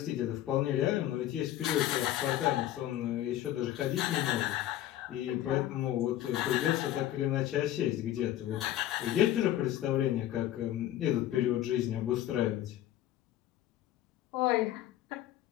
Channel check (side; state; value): right; quieter; 13.1 dB